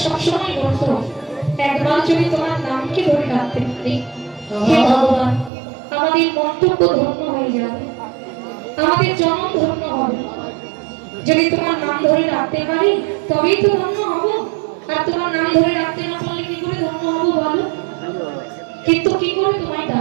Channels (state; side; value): drops out; left; at 5.5 s